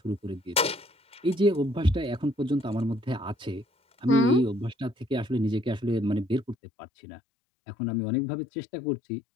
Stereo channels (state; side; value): drops out; right; at 6.6 s